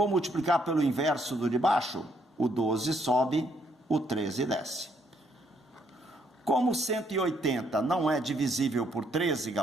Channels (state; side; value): normal; both; correlation 0.71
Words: multiplicar pelo inverso do de baixo. O 12 sobe, o 13 desce. Como 180 não é divisível por 13,